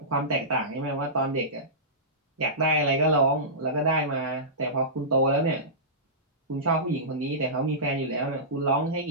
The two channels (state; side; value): normal; both; correlation -0.18